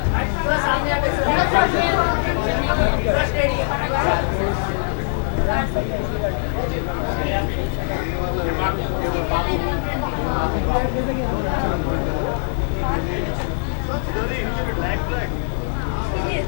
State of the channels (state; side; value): silent; right; 65 dB below the other